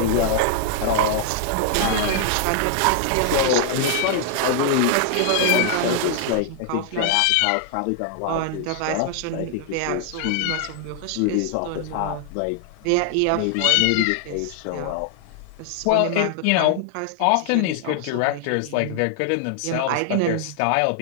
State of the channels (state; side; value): different; both; correlation 0.00